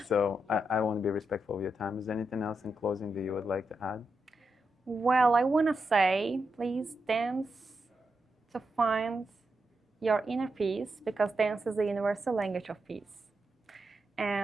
So I want to be respectful of your time. Is there anything else in closing that you would like to add? Well, I want to say, please dance to find your inner peace, because dance is the universal language of peace.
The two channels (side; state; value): both; normal; correlation 0.85